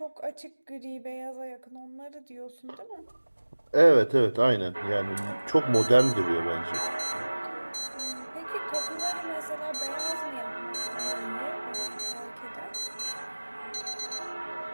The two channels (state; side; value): inverted; both; correlation -1.00